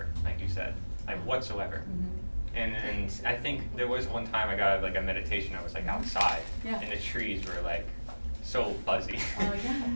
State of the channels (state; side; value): inverted; both; correlation -1.00